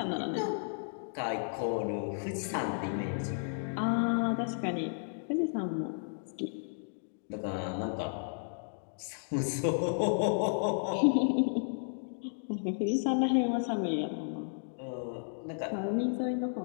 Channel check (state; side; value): silent; right; digital silence